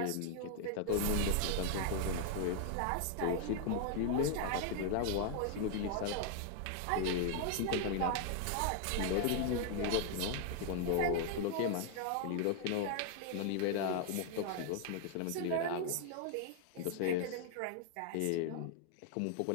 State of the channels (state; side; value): different; both; correlation 0.00